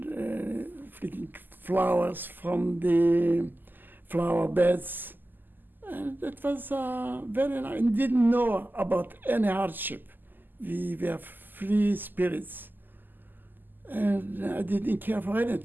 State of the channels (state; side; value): late; left; 0.089 ms